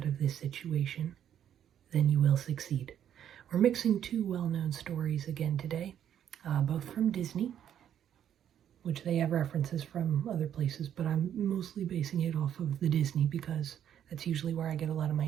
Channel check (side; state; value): left; quieter; 9.9 dB